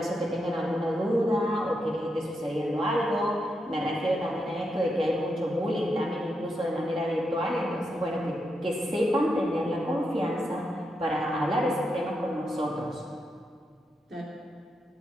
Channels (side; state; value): both; normal; correlation 0.84